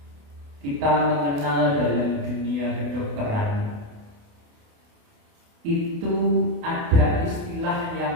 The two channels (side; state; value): left; late; 28 ms